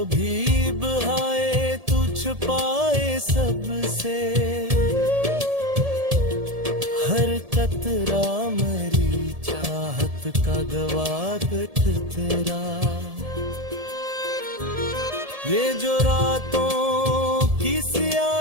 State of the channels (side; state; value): left; late; 1.7 ms